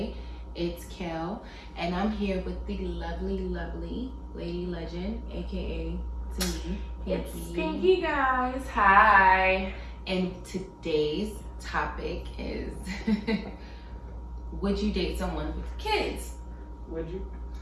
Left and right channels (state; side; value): identical; both; correlation 1.00